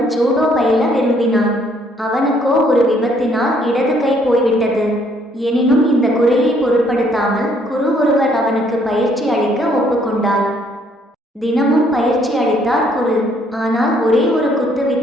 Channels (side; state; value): both; normal; correlation 0.66